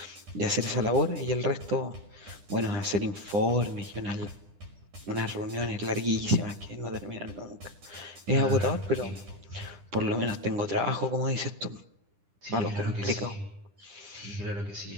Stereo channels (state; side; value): late; left; 10 ms